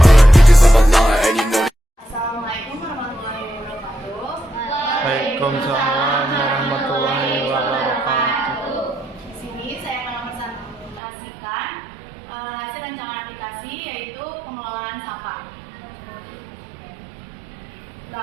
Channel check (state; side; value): drops out; left; at 11.0 s